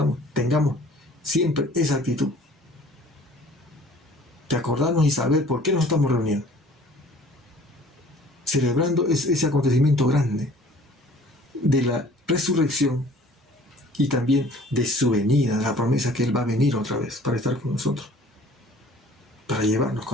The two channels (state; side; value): normal; both; correlation 0.51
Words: tengamos siempre esa actitud de acordarnos y saber por qué nos estamos reuniendo, celebrando ese acontecimiento grande de la resurrección y también de su venida, de la promesa que Él va a venir otra vez para estar con nosotros, para llevarnos